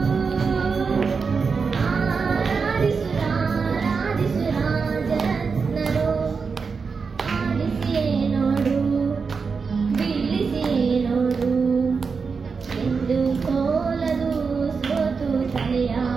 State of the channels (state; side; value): quieter; left; 5.2 dB